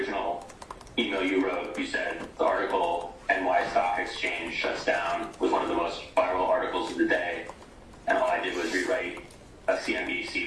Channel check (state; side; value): identical; both; correlation 1.00